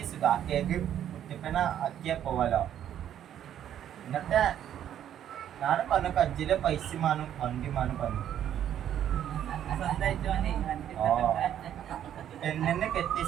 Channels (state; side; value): quieter; left; 10.4 dB